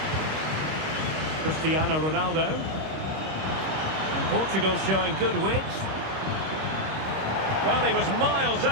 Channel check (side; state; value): left; late; 26 ms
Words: Cristiano Ronaldo. And Portugal showing good wit. Well, he was miles